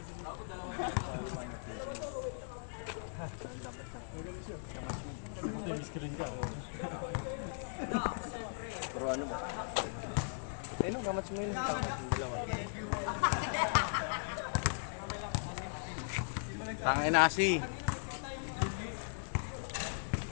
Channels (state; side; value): silent; right; digital silence